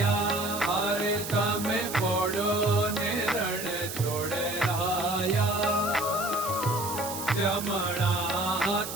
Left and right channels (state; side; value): noise; right; hiss, 8 dB below the sound